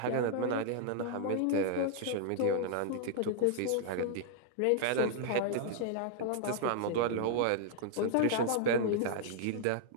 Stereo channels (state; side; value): different; both; correlation -0.01